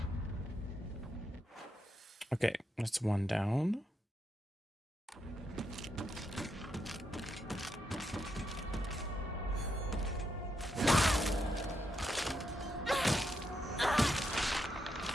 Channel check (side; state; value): both; normal; correlation 0.81